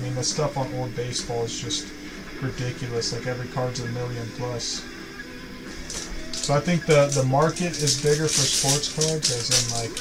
mean the stuff on old baseball is just ridiculous. Like every card's $1 million plus. So I think the market is bigger for sports cards, as in like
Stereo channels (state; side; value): identical; both; correlation 1.00